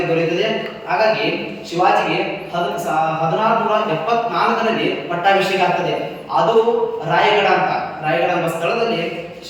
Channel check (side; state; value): both; identical; correlation 1.00